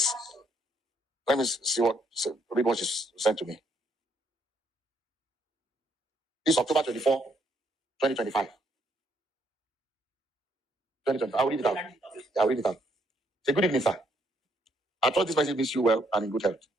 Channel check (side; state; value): both; normal; correlation 0.71